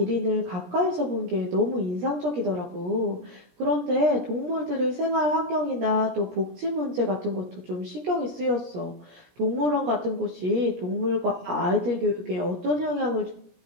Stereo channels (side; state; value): left; late; 17 ms